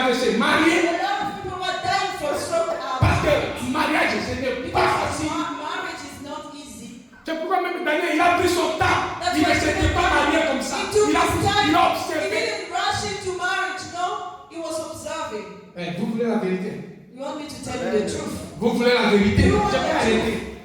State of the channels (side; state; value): both; identical; correlation 1.00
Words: le WC. Mariés. A lot of people were dying from stroke. Parce que mariage, ce n'est pas Because facile. marriage is not easy. C'est pourquoi même Daniel, il a pris son temps. That's Il why ne s'était pas marié comme ça. He took Il a his time. il a He observé. didn't rush into marriage, no. He was observing. Vous voulez la vérité? You want me to tell you the truth? Vous voulez la vérité? You want Je vais the arrêter.